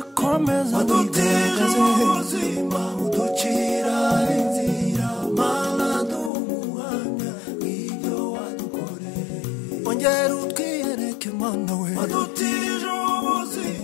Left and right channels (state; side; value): drops out; right; at 6.3 s